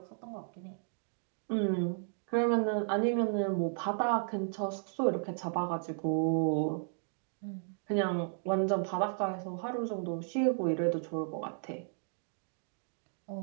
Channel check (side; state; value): left; silent; digital silence